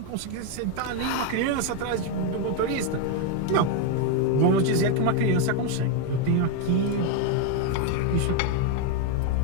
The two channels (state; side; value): different; both; correlation 0.01